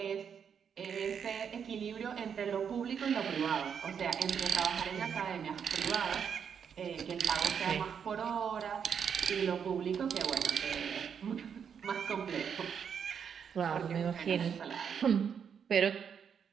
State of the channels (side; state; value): left; quieter; 7.4 dB